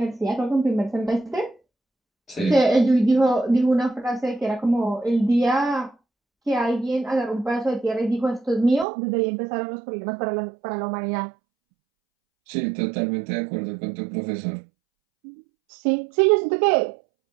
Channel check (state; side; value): drops out; left; at 8.8 s